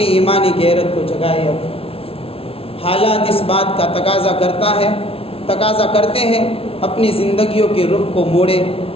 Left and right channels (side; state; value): right; late; 0.27 ms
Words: ایمانی غیرت کو جگائیں۔ اب حالات اس بات کا تقاضا کرتے ہیں اپنی زندگیوں کے رخ کو موڑے،